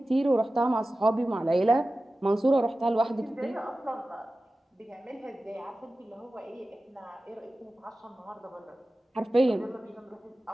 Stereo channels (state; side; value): normal; both; correlation 0.95